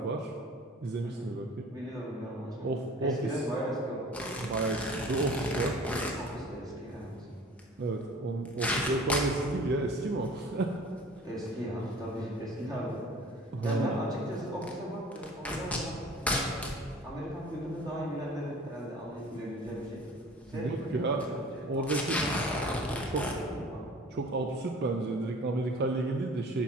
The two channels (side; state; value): both; normal; correlation 0.46